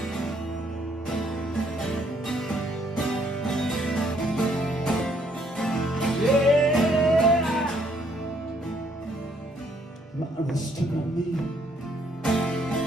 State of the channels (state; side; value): normal; both; correlation 0.68